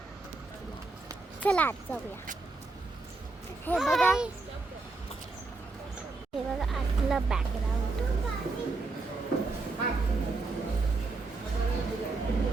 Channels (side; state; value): left; quieter; 3.5 dB